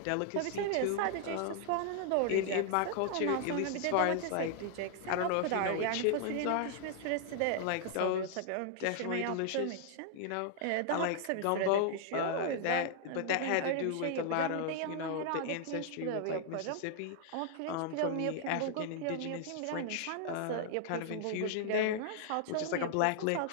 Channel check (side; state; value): both; different; correlation 0.00